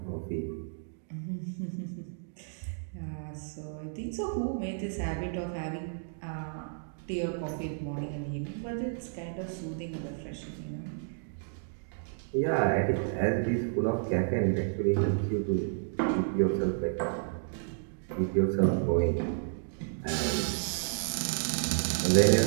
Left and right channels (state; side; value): silent; left; digital silence